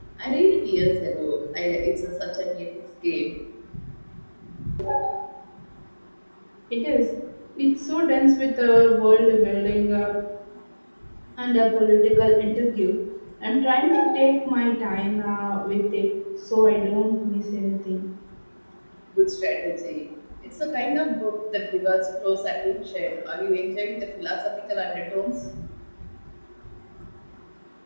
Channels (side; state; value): both; inverted; correlation -1.00